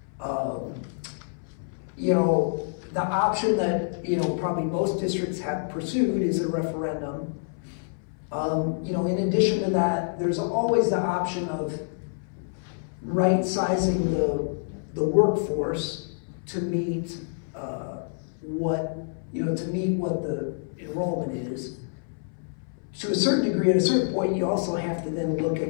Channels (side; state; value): right; silent; 60 dB below the other